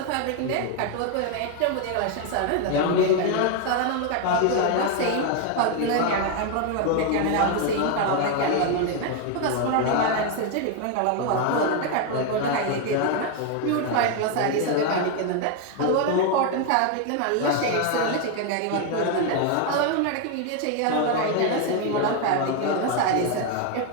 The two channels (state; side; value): different; both; correlation 0.01